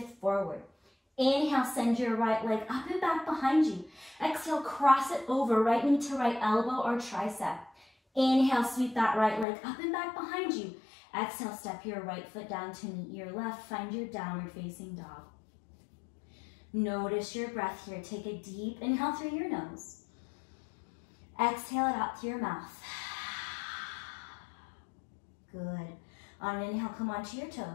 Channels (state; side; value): drops out; right; at 9.5 s